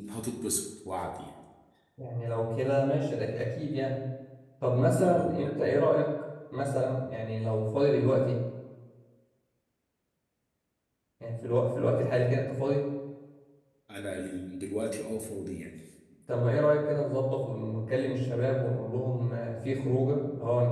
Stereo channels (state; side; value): identical; both; correlation 1.00